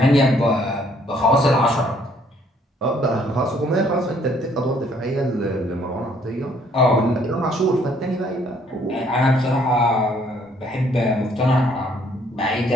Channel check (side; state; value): both; normal; correlation 0.64